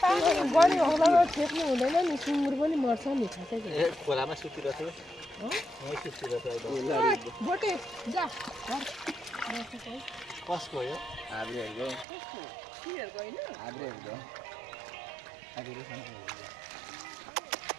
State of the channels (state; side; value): drops out; left; at 12.1 s